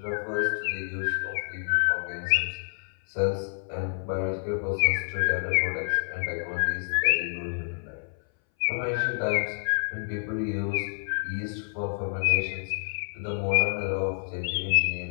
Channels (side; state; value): right; silent; 59 dB below the other